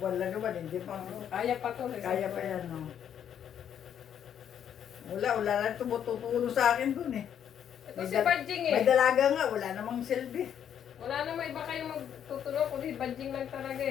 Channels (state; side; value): quieter; right; 9.1 dB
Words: lang naman, hindi pa. Kaya pa to. Kaya pa yan, no? Wala lang tumutulong sa akin dun eh. Ito si Badjing eh. May dalaga nga, wala namang silbi. Wala na may iba kayong magtutulong kundi Badjing lang talaga